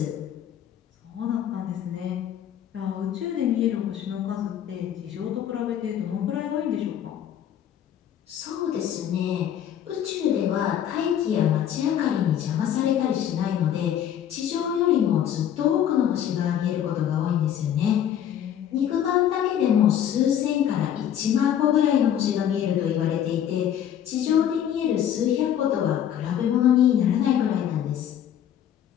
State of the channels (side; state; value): right; quieter; 10.0 dB